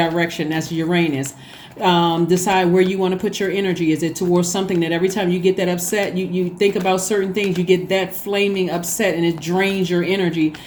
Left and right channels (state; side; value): identical; both; correlation 1.00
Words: That's Uranus. Decide where you want to put your energy. Is it towards something that every time you get that upset, you think about certain things, you get that flaming upset and it drains your energy